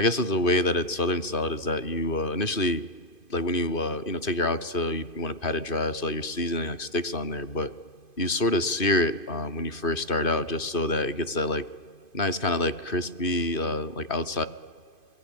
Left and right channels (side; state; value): right; late; 2.5 ms